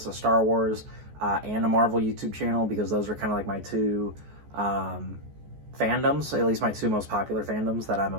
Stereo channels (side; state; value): left; late; 14 ms